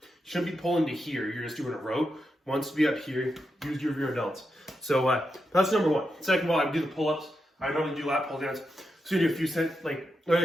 shouldn't be pulling to here. You're just doing a row. Wants to be up here, use your rear delts. So that's number 1. Second of all, I would do the pull-ups. I normally do lat pull downs. So you do a few sets, like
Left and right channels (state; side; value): normal; both; correlation 0.86